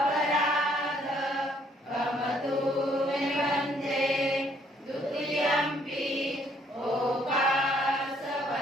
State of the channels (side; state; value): both; normal; correlation 0.66